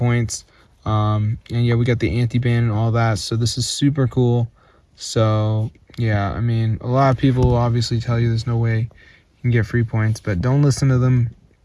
And yeah, we got the anti-ban and all that, so this is super cool. So yeah, I mean, a lot of people will obviously tell you there's no way you can get free points, but don't listen to them.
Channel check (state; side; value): identical; both; correlation 1.00